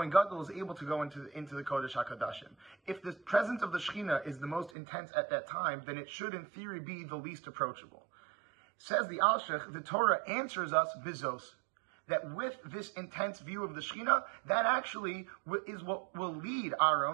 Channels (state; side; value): drops out; left; at 4.7 s